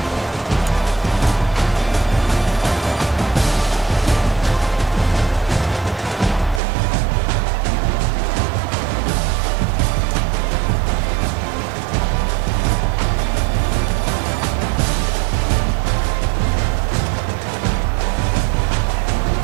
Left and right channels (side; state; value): left; drops out; at 6.6 s